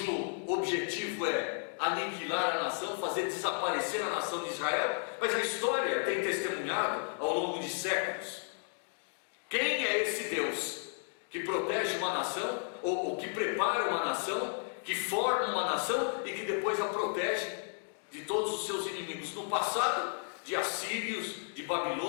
objetivo é aniquilar a nação, fazer desaparecer a nação de Israel. Mas a história tem testemunhado ao longo de séculos. Quem é esse Deus que protege uma nação, ou que prepara uma nação, que forma uma nação e que depois a protege de todos os seus inimigos? No passado, de assírios, de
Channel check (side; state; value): right; silent; 55 dB below the other